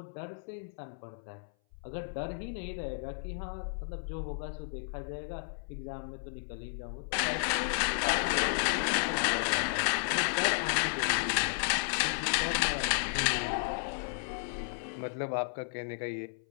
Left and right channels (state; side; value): silent; right; 56 dB below the other